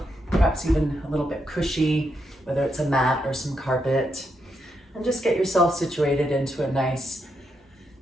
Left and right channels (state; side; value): normal; both; correlation 0.81